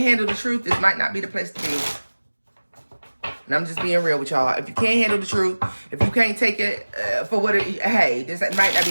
handle the truth, this might not be the place to be. And I'm just being real with y'all. If you can't handle the truth, if you can't take it for what it, hey, this might not be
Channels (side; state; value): both; inverted; correlation -1.00